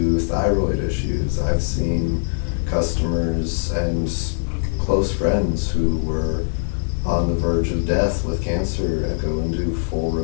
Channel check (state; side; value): silent; right; digital silence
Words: thyroid issues. I've seen customers and close friends who were on the verge of death with cancer and go into full